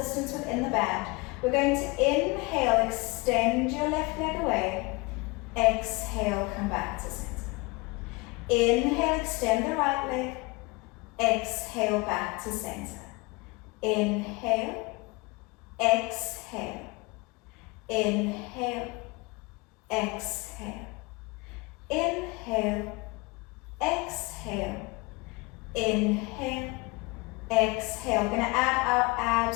within the band. We're going to inhale, extend your left leg away. Exhale, come back to center. Inhale, extend the right leg. Exhale, back to center. Inhale, exhale. Inhale, exhale. Inhale, exhale. Inhale, exhale. We're going to add our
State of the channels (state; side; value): quieter; right; 26.0 dB